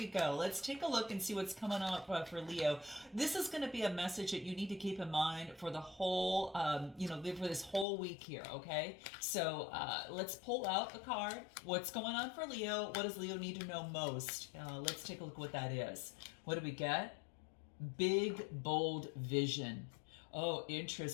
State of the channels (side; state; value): right; drops out; at 7.9 s